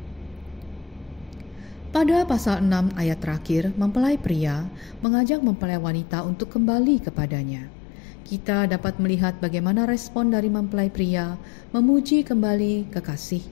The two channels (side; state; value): right; drops out; at 5.1 s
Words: Pada pasal 6 ayat terakhir, mempelai pria mengajak mempelai wanita untuk kembali kepadanya. Kita dapat melihat bagaimana respon dari mempelai pria memuji kembali